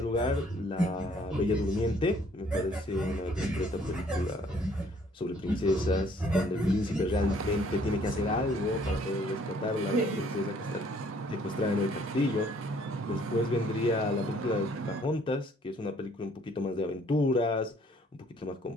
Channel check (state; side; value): normal; both; correlation 0.61